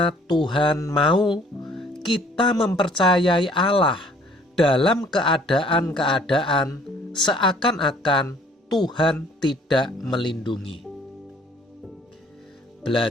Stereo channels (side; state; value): both; normal; correlation 0.57